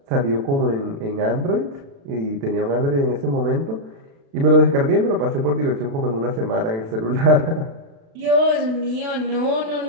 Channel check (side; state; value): left; late; 36 ms